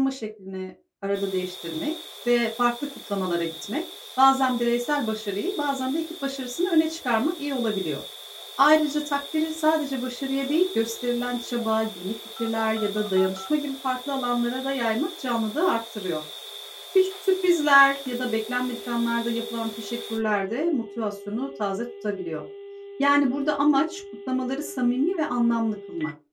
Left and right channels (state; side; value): identical; both; correlation 1.00